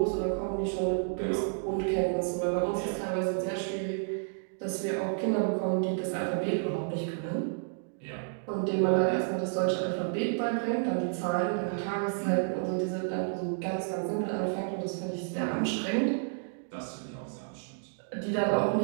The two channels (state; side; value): silent; left; digital silence